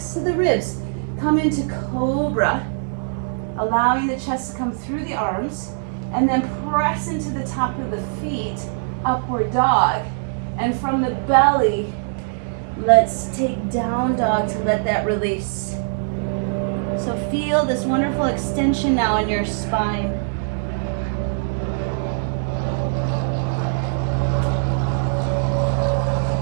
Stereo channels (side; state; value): left; silent; digital silence